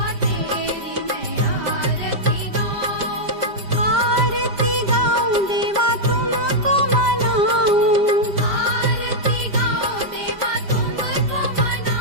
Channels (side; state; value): left; late; 5.1 ms